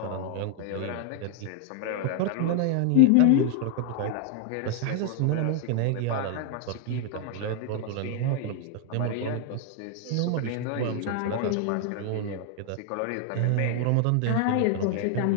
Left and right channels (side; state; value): both; different; correlation 0.00